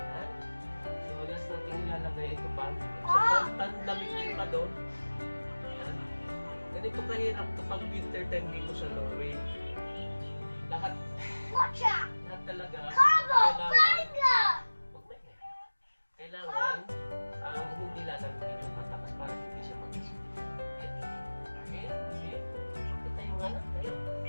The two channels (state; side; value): inverted; both; correlation -1.00